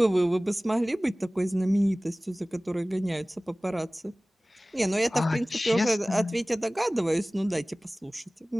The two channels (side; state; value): both; normal; correlation 0.98